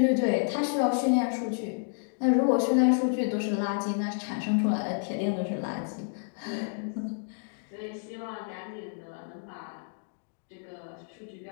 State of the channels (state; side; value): silent; right; 58 dB below the other